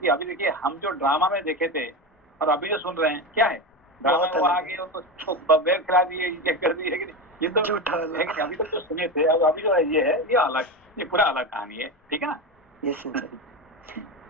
अभी देखिए हम जो ड्रामा में देखे थे और अभी जो सुन रहे हैं क्या है? ड्रामा में वो आगे उनको बेर खिला दिए, ये कर दिए, है कि नहीं? ये तो है कि अभी तक तो सुने थे, और अभी जो है ये अलग, ये पूरा अलग कहानी है, ठीक है ना? यस सिंसे,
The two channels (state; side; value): normal; both; correlation 0.19